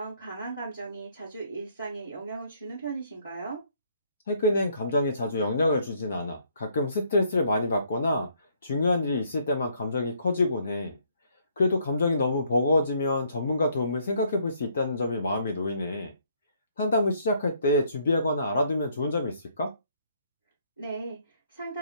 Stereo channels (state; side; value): inverted; both; correlation -0.67